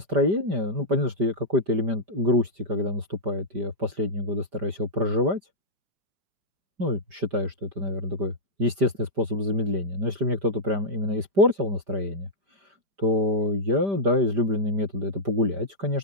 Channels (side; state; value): left; late; 5.1 ms